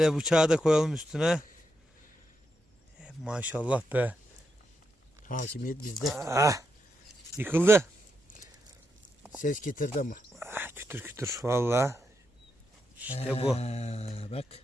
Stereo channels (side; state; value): both; normal; correlation 0.84